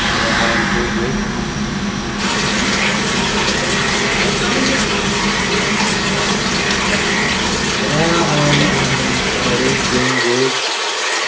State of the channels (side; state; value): both; identical; correlation 1.00